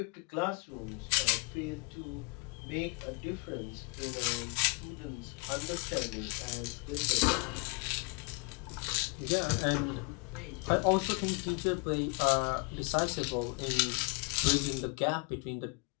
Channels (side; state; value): right; quieter; 29.4 dB